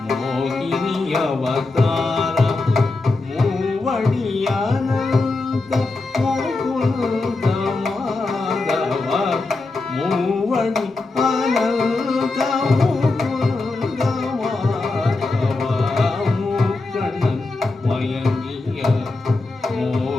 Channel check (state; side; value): quieter; right; 3.4 dB